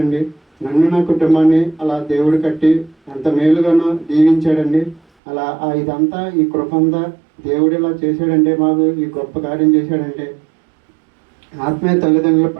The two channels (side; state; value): left; drops out; at 5.0 s